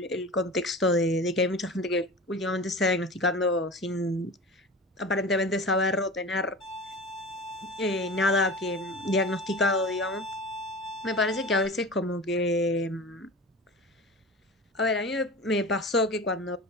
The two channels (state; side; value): normal; both; correlation 0.33